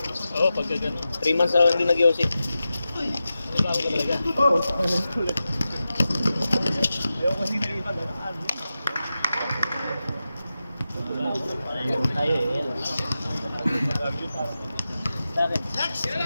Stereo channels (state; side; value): inverted; both; correlation -0.93